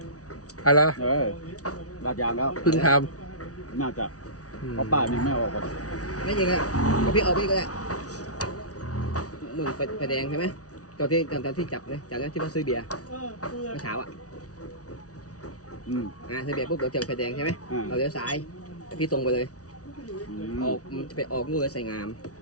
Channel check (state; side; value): late; right; 0.67 ms